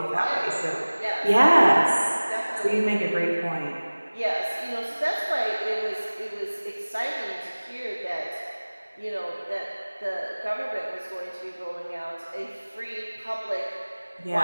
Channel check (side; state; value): both; inverted; correlation -1.00